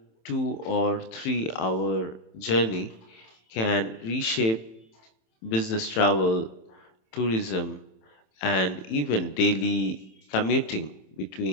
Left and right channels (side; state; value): right; late; 27 ms